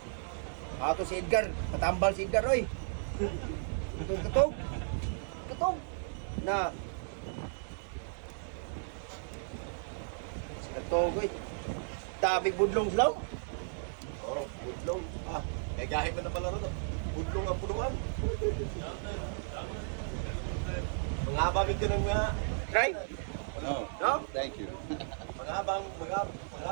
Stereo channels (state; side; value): silent; left; 55 dB below the other